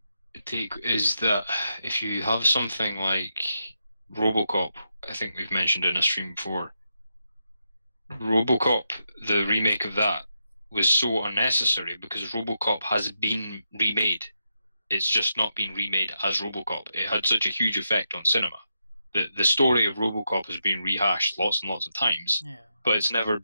take is that if you have something like RoboCop, I think we've mentioned in a stream before. RoboCop, the remake of that, was so unnecessary because RoboCop has been remade. It's just not been remade as RoboCop. It had such a huge effect on cinema. The story of RoboCop has been rehashed lots and lots of times, but it's never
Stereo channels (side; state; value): both; inverted; correlation -0.84